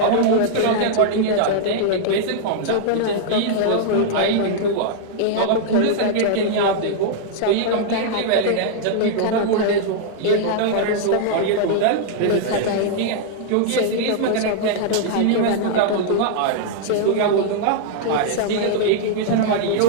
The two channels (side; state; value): both; different; correlation -0.01